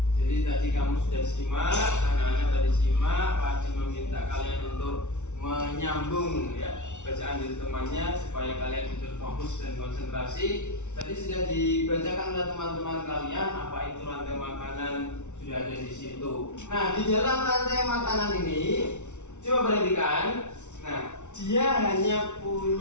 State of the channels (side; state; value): right; late; 0.83 ms